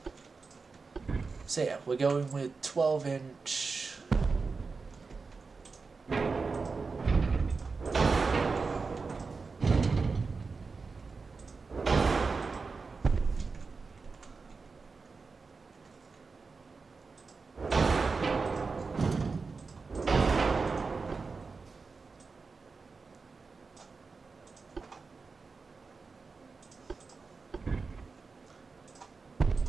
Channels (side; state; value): left; quieter; 4.5 dB